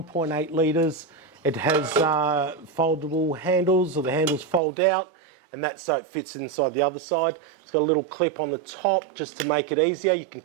litres, it has foldable handles, or the handles fold out, and that's so it fits inside the other side. It's got a little clip on the top just to make it easier. You can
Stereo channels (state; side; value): drops out; left; at 4.6 s